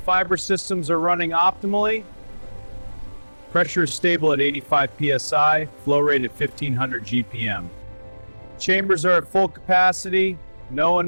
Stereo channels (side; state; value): both; inverted; correlation -1.00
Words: Fiber systems are running optimally. Pressure is stable at 85 psi, flow rate at 1500 GPM. Chambers are at full capacity, no